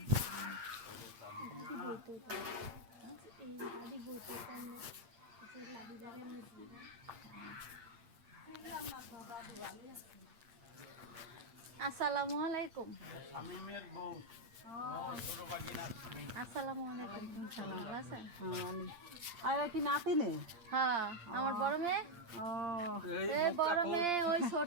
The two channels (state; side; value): late; left; 8.7 ms